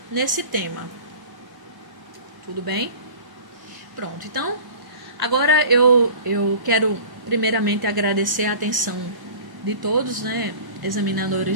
nesse tema. Tudo bem? Pronto, então, agora eu quero primeiramente agradecer a atenção de todos, né,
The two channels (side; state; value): left; late; 1.0 ms